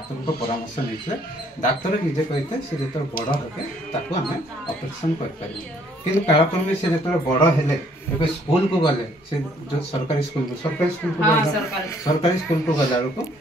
ପରାମର୍ଶ ନେଇଥିଲେ। ଡାକ୍ତର ନିଜେ କହିଥିଲେ ସେ ଯେତେବେଳେ ବଡ଼ ହେବେ ତାକୁ ଆମେ ଅପରେସନ୍ କରିପାରିବୁ। କିନ୍ତୁ କାଳକ୍ରମେ ସେ ଯେତେବେଳେ ବଡ଼ ହେଲେ ଏବେ ସ୍କୁଲକୁ ଗଲେ, ସେ ଯେଉଁ ସରକାରୀ ସ୍କୁଲକୁ ଗଲା ବେଳକୁ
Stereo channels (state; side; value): normal; both; correlation 0.64